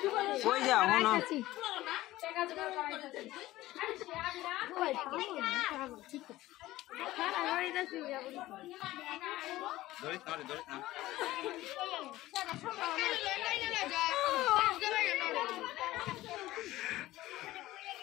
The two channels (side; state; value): right; quieter; 16.6 dB